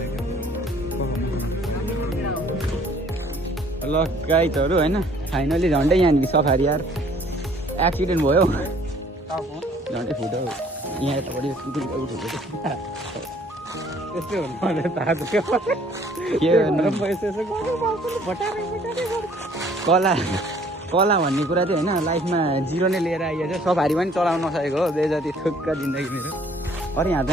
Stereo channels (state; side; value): normal; both; correlation 0.58